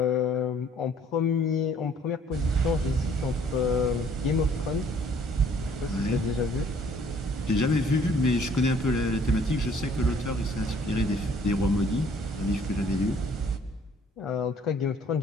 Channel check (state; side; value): normal; both; correlation 0.59